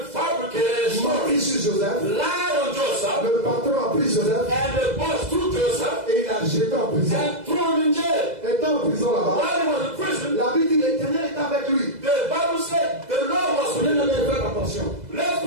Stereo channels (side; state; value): left; late; 2.0 ms